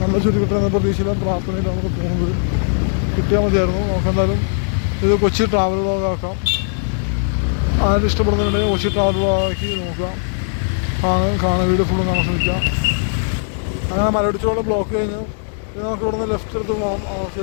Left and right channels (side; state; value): right; silent; digital silence